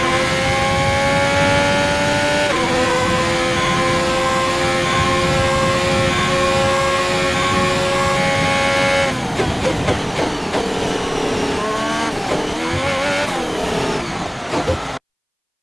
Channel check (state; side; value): identical; both; correlation 1.00